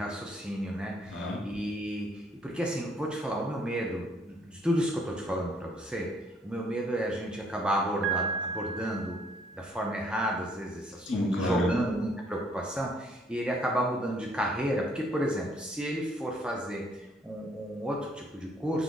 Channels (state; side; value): normal; both; correlation 0.65